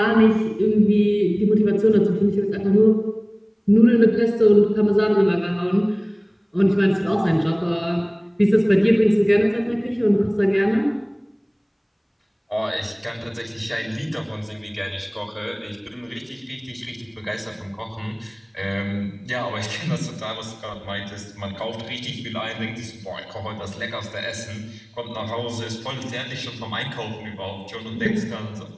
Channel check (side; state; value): both; identical; correlation 1.00